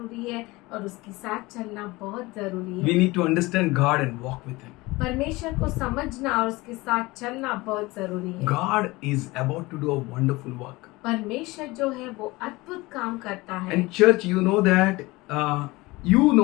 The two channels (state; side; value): quieter; right; 21.7 dB